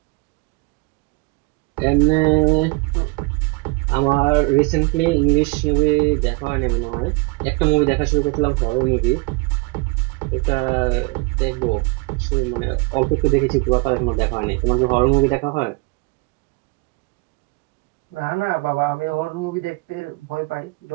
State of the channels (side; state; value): left; quieter; 26.6 dB